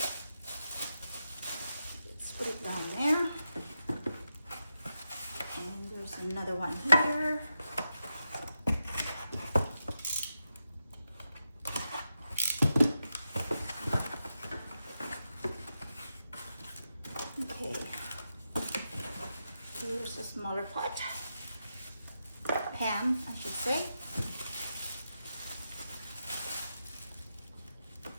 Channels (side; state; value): both; inverted; correlation -0.88